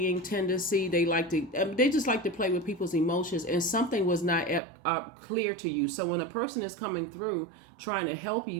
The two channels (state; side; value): drops out; left; at 4.6 s